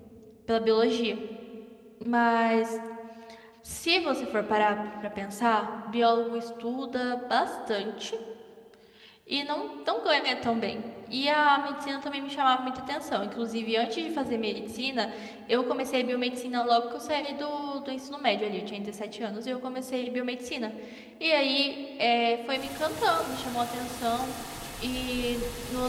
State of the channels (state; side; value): identical; both; correlation 1.00